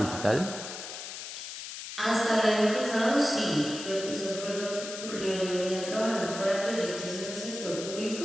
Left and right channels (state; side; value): noise; left; hiss, 9 dB below the sound